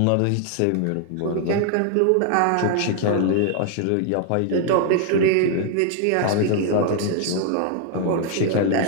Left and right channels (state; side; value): different; both; correlation 0.00